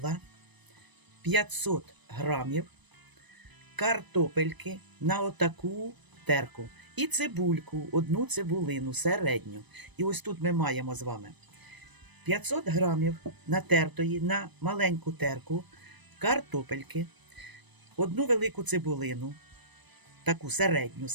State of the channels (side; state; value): left; late; 1.0 ms